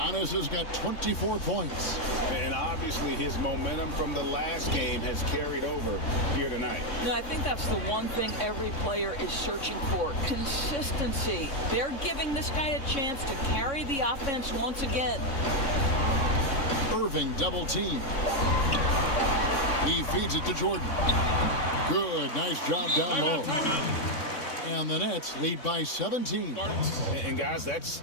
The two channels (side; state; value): right; late; 3.6 ms